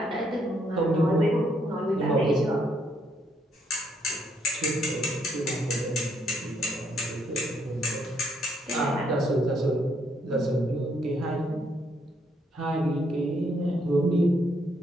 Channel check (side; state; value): both; normal; correlation 0.72